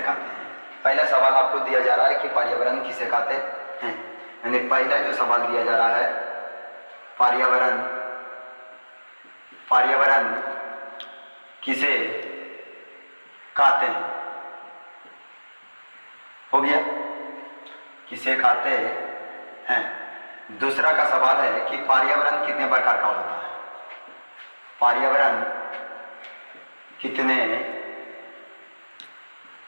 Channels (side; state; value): both; inverted; correlation -1.00